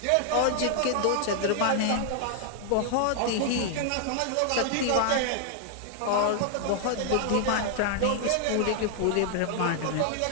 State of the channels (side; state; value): both; different; correlation 0.00